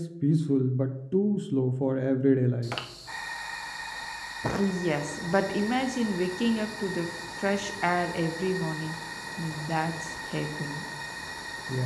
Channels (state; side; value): identical; both; correlation 1.00